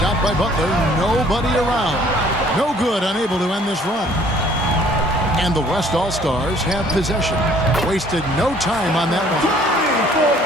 by Butler, nobody around. No good, unable to end this run. And the West All-Stars have possession. Wasted no time on that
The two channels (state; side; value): normal; both; correlation 0.57